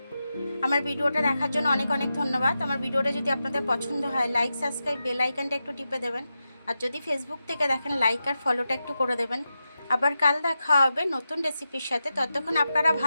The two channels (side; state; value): both; inverted; correlation -0.90